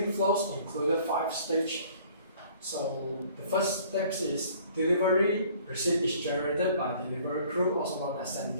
flows included 5 stages. So the first step is delivery receipt is generated by delivery crew, also known as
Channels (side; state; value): both; inverted; correlation -0.55